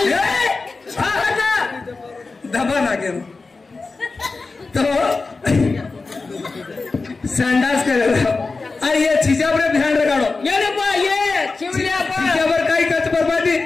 हा हटा दबा लागे तो संडास करे अरे ये चीजा पर ध्यान रखाड़ो ये ने पा ये चिवलिया पा चीजा पर काई कच बर्बादी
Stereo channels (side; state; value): right; quieter; 3.9 dB